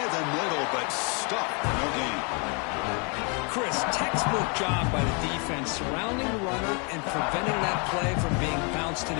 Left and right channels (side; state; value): right; quieter; 35.0 dB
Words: the middle, but stuck. No gain. Chris, textbook job by the defense surrounding the runner and preventing that play from being bounced to